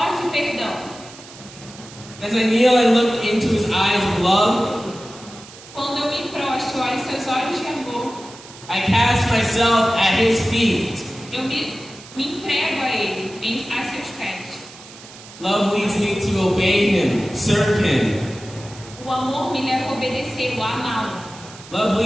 e perdão. As I kneel and look into His eyes of love, Quando eu me prostro, olho seus olhos de amor, I cast myself at His feet. eu me entrego a Ele, a seus pés. Love leads me to obey Him, serve Him. O amor me leva a obedecê-lo, a amá-lo. Love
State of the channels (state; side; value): noise; right; hiss, 18 dB below the sound